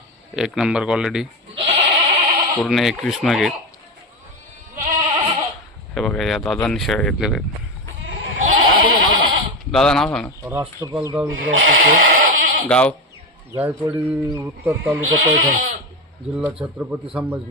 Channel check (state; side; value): normal; both; correlation 0.16